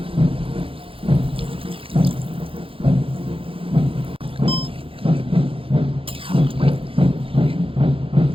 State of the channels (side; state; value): left; late; 0.27 ms